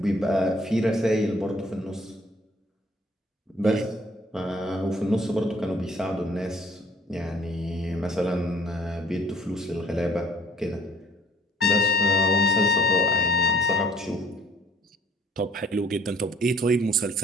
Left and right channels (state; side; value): normal; both; correlation 0.57